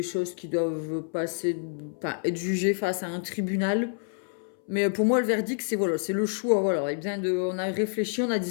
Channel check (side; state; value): right; silent; 60 dB below the other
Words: choses qui doivent passer, enfin, être jugées face à un tribunal. Mais pour moi, le verdict, c'est voilà, c'est le choix. Voilà, et bien on a réfléchi, on a